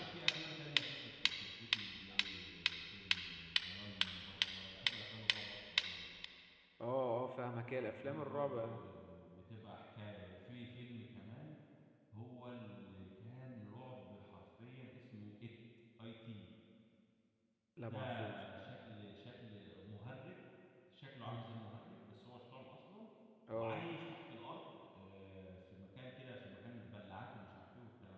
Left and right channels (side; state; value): both; identical; correlation 1.00